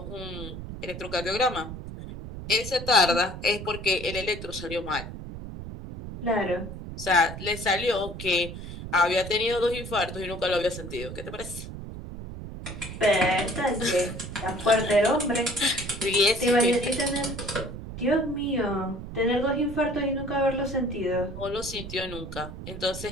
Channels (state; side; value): noise; right; rumble, 10 dB below the sound